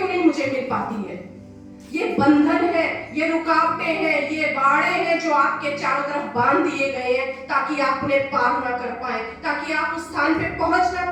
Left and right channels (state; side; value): identical; both; correlation 1.00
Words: नहीं मुझे मिल पाती है? ये बंधन है, ये रुकावटें हैं, ये बाड़े हैं जो आपके चारों तरफ बांध दिए गए हैं ताकि आप उन्हें पार ना कर पाए, ताकि आप उस स्थान पे पहुंच ना